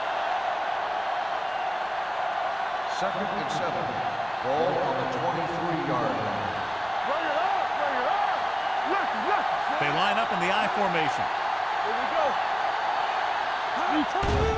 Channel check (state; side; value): identical; both; correlation 1.00